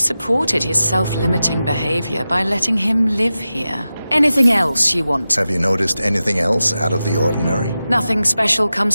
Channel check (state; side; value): inverted; both; correlation -0.93